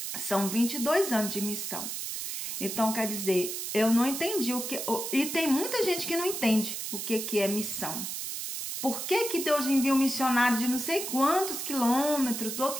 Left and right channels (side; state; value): right; noise; hiss, 5 dB below the sound